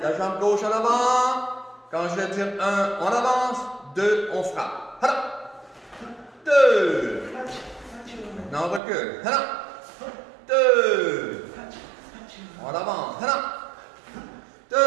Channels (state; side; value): drops out; left; at 8.8 s